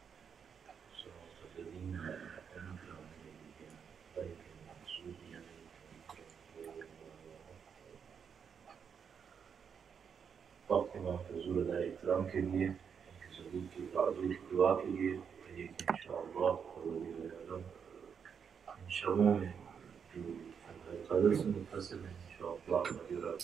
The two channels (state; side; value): quieter; left; 6.9 dB